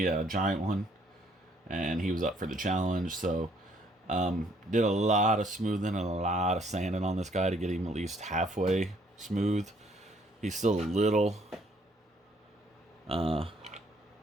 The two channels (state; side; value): normal; both; correlation 0.65